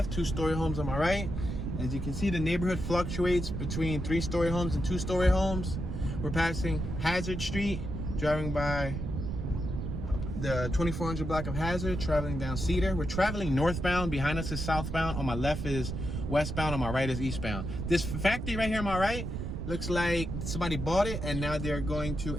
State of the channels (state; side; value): noise; right; rumble, 4 dB below the sound